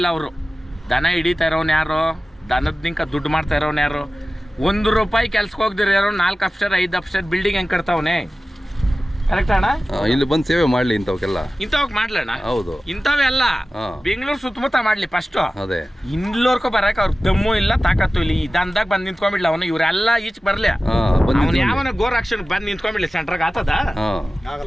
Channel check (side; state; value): both; normal; correlation 0.96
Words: ಅವರು ದನ ಹಿಡಿತಾ ಇರೋನು ಯಾರು? ದನದ ನಿಂಕ ದುಡ್ಡು ಮಾಡ್ತಾ ಇರೋನು ಯಾರು? ₹1 ಕೆಲ್ಸಕ್ಕೆ ಹೋಗ್ದಿರ ಯಾರು 4 ಅಪ್ಸ್ಟೇರ್ 5 ಅಪ್ಸ್ಟೇರ್ ಬಿಲ್ಡಿಂಗ್ ಹೆಂಗೆ ಕಟ್ತಾವನೆ, ಕರೆಕ್ಟ್ ಅಣ್ಣ? ಇಲ್ಲಿ ಬಂದು ಸೇವೆ ಮಾಡ್ಲಿ ಇಂಥವಕ್ಕೆಲ್ಲ. ಇಂಥವಕ್ ಮಾಡ್ಲಣ್ಣ. ಹೌದು, ಇಂಥವೇ ಅಲ್ಲ, ಬೆಂಗಳೂರು ಸುತ್ತಮುತ್ತ ಮಾಡ್ಲಿ ಫಸ್ಟ್. ಅದೇ ಇಲ್ಲೋರ್ಕೊ ಬರಕ್ ಅವ್ರ ದಮ್ಮು ಇಲ್ಲ, ತಾಕತ್ತು ಇಲ್ಲ. ಈ ದಂದಾಗ ಬಂದು ನಿಂತ್ಕೊಂಡ್ಬಿಡ್ಲಿ ಅವನು, ಇವರೆಲ್ಲ ಈಚ್ ಬರ್ಲಿ. ಅವನು ಯಾವನ ಗೋರಕ್ಷಣೆ ಬಂದು ನಿಂತ್ಕೊಂಡ್ಬಿಡ್ಲಿ ಸೆಂಟ್ರಾಗ ಆತದ?